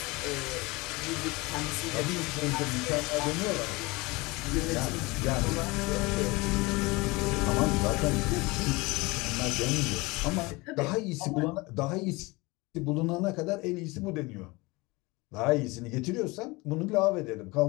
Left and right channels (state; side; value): quieter; right; 23.9 dB